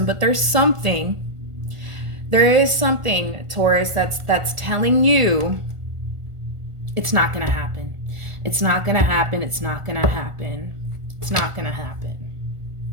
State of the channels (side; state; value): left; late; 1.4 ms